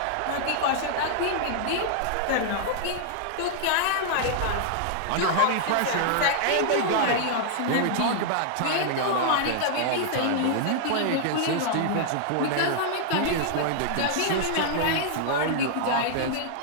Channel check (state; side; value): different; both; correlation -0.01